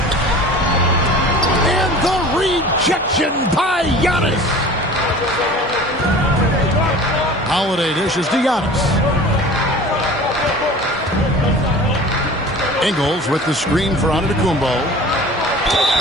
And the rejection by Giannis. Holiday dishes to Giannis. Ingles with the screen for Antetokounmpo.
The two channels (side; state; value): both; normal; correlation 0.41